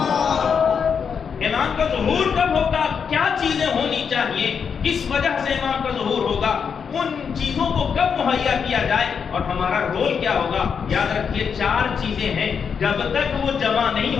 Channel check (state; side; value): quieter; right; 6.6 dB